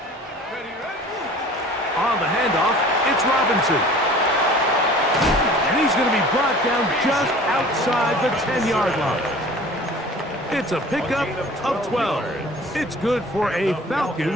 Ready? On the handoff, it's Robinson. And he's going to be brought down just outside the 10-yard line. It's a pickup of 12. It's good for a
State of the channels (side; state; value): both; normal; correlation 0.45